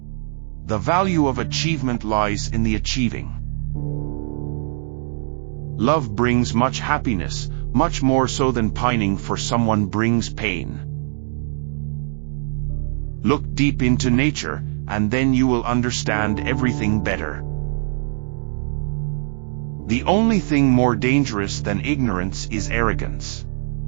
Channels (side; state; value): left; silent; digital silence